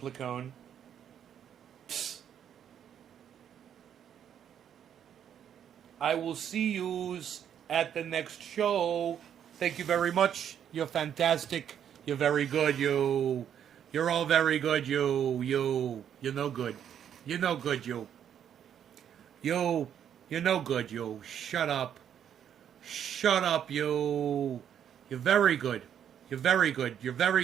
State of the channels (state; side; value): quieter; left; 9.2 dB